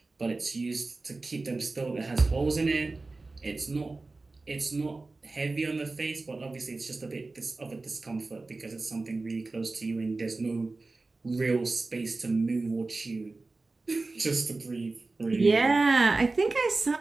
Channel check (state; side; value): quieter; left; 3.5 dB